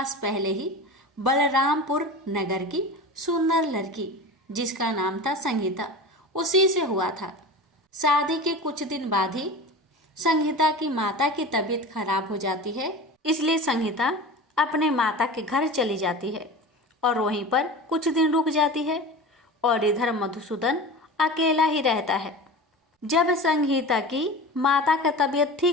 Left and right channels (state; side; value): normal; both; correlation 0.32